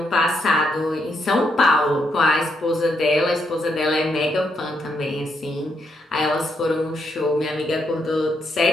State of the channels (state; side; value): normal; both; correlation 0.78